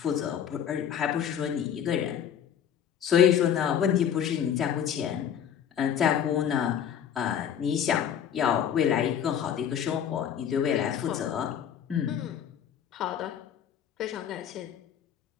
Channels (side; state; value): right; quieter; 8.9 dB